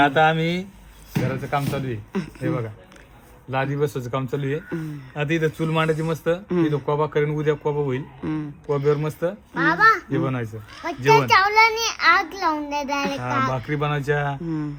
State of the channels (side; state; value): both; identical; correlation 1.00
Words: आम्ही घराचं काम चालू आहे. हे बघा लादी बसवायचं काम चालू आहे. आता इथं चूल मांडायची मस्त, इथं कोबा करेन, उद्या कोबा होईल. कोब्यावर मस्त बाबा हे बनवायचं मच्छर जेवण. चावलाने आग लावून दे डायरेक्ट. भाकरी बनवायच्या.